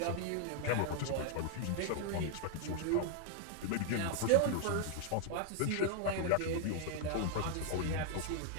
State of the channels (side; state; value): both; different; correlation 0.00